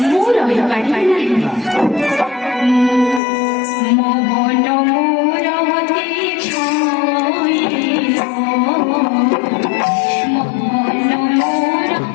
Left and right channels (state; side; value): drops out; right; at 3.2 s